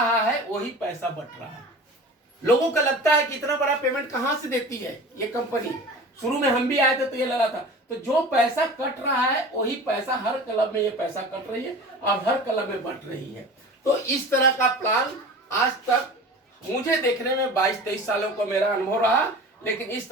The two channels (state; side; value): normal; both; correlation 0.37